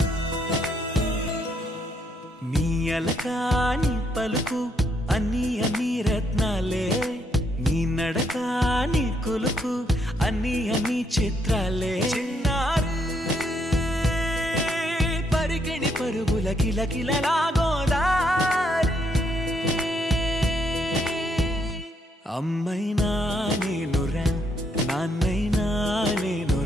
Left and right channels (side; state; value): both; normal; correlation 0.74